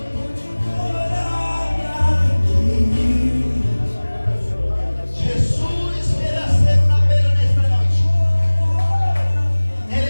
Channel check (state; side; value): inverted; both; correlation -1.00